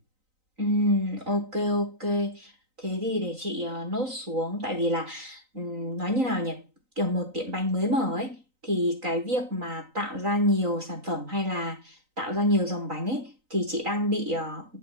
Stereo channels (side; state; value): left; late; 3.9 ms